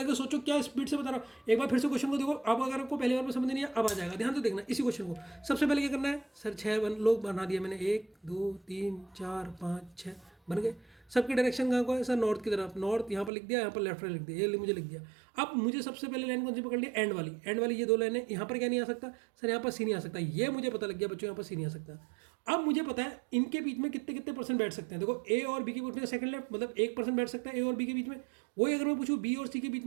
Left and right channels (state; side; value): drops out; left; at 13.3 s